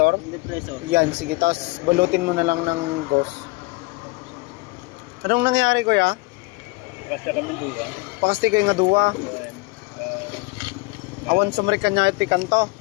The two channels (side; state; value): right; quieter; 24.9 dB